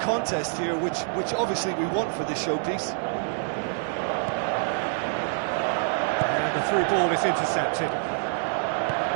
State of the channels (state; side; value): silent; left; digital silence